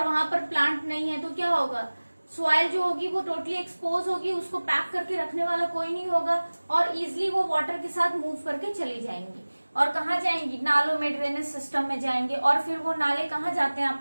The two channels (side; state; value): both; inverted; correlation -1.00